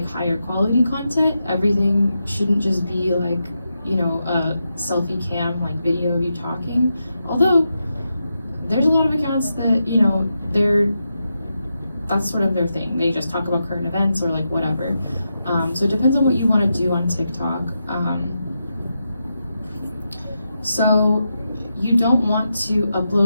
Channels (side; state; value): both; inverted; correlation -0.87